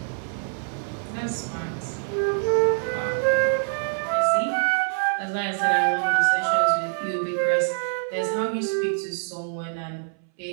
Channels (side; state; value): left; silent; 60 dB below the other